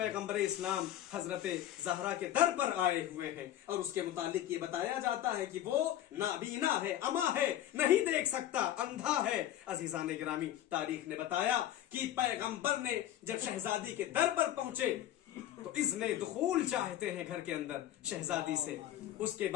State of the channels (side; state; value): right; quieter; 12.4 dB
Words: इस्लाम हजरत ज़हरा के दर पर आए हुए हैं और उसके मुतालिक ये बताया जाता है कि वो नाबीना है, अमा है, नहीं देख सकता, अंधा है। अजीजान गिरामी, तारीख ने बताया कि पैगंबर ने जब शहजादी के दर पर पहुंचे तो इज़्ने दुखूल चाहते हैं घर के अंदर शहजादी से। उसके